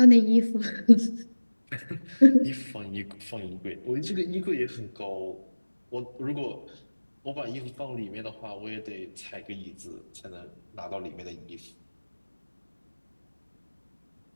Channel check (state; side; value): inverted; both; correlation -1.00